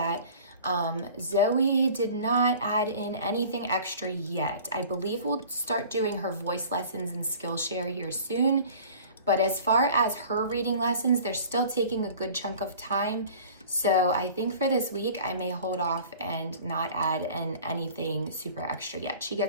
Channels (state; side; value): inverted; both; correlation -0.45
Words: Zoe did not add in anything extra yet. I believe we'll start doing her voice lessons and Skillshare here soon. But as far as her reading lessons, they're still taking a good chunk of time. So I think for this week, I may hold off and not add in anything super extra yet. She